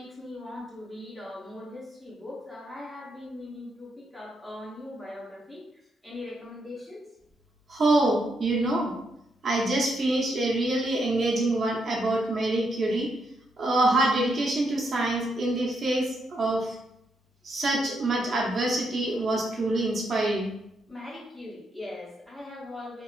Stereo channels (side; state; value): both; normal; correlation 0.79